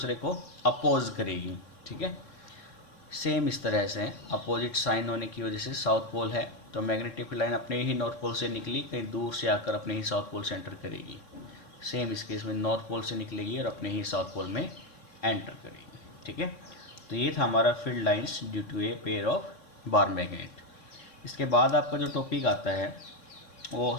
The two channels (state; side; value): late; right; 3.6 ms